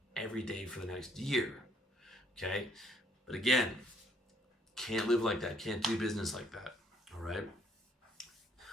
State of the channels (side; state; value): both; normal; correlation 0.67